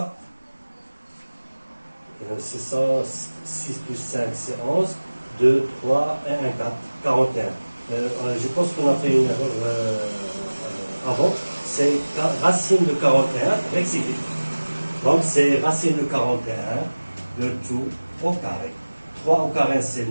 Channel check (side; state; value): both; inverted; correlation -1.00